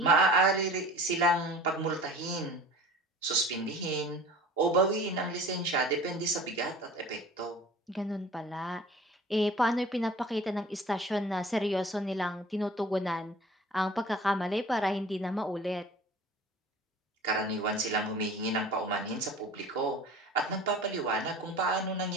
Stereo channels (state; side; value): normal; both; correlation 0.43